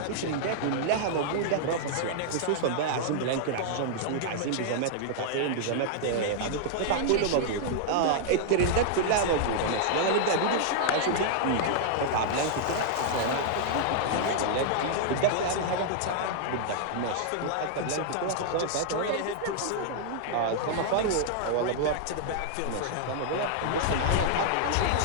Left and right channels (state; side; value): different; both; correlation -0.01